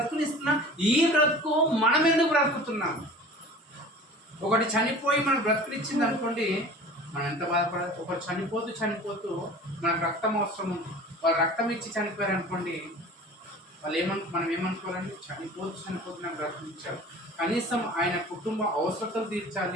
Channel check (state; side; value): normal; both; correlation 0.41